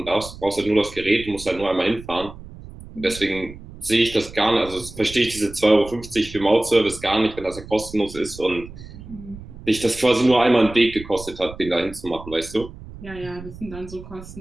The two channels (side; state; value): right; noise; rumble, 15 dB below the sound